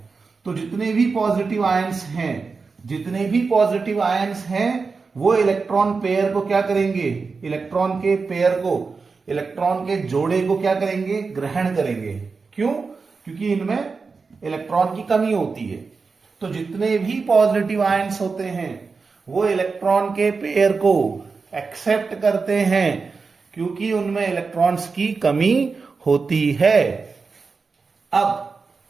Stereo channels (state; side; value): quieter; left; 4.6 dB